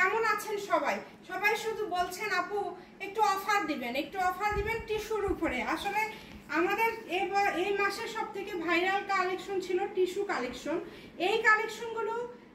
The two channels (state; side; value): identical; both; correlation 1.00